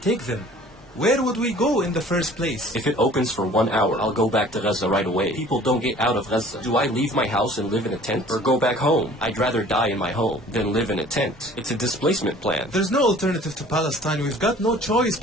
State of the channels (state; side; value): normal; both; correlation 0.50